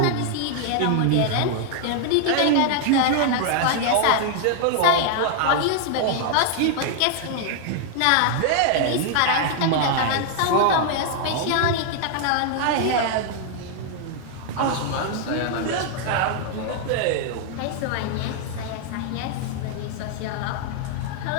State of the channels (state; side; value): different; both; correlation 0.00